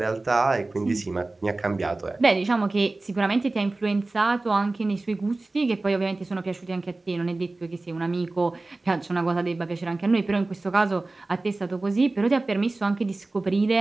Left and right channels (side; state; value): left; quieter; 3.1 dB